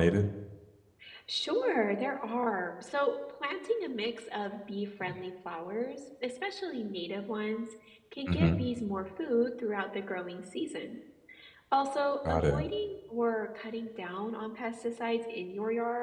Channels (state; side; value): identical; both; correlation 1.00